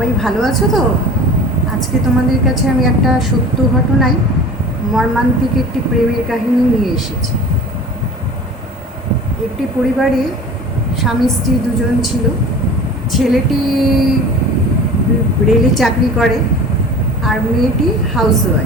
ভালো আছো তো? আজকে তোমাদের কাছে আমি একটা সত্য ঘটনায় মর্মান্তিক একটি প্রেমের কাহিনী নিয়ে এসেছি। একটি পরিবারে স্বামী স্ত্রী দুজন ছিল। ছেলেটি রেলে চাকরি করে আর মেয়েটি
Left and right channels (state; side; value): normal; both; correlation 0.40